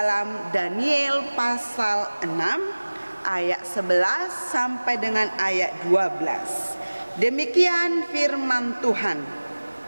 Daniel pasal 6 ayat 11 sampai dengan ayat 12. Demikian firman Tuhan.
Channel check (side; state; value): both; inverted; correlation -1.00